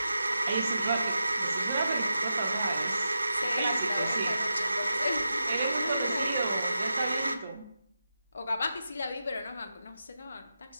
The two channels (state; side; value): inverted; both; correlation -0.89